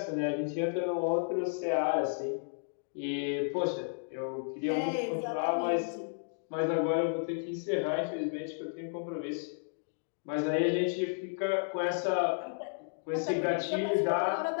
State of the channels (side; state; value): right; silent; digital silence